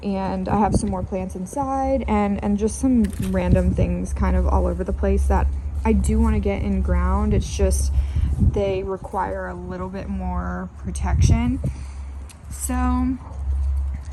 and I have some more plants inside, and just some random things kind of all over the place that I do want to get in ground. It's just they require a little bit more protection. So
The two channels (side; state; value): both; identical; correlation 1.00